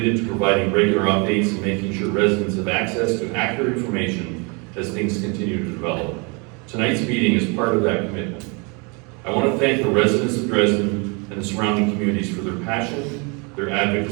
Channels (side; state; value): left; quieter; 31.6 dB